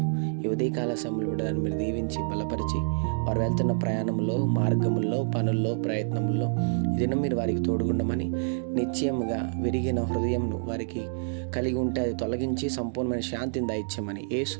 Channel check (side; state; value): left; silent; digital silence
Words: ఈ ఉదయకాల సమయంలో కూడా మీరు దీవించి బలపరిచి వారు వెళ్తున్న ప్రయాణంలో, మార్గముల్లో, పనుల్లో, ప్రయత్నంలో ఈ దినం మీరు వారికి తోడుగుండమని, నిశ్చయముగా విరిగిన హృదయంను వారికి కలిగి ఉంటే అది తొలగించి సంపూర్ణమైన శాంతిని దయచేయమని యేసు